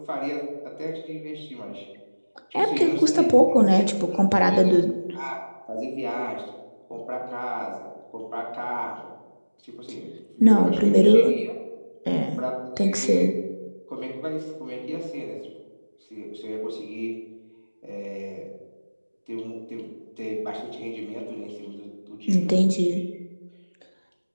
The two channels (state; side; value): inverted; both; correlation -1.00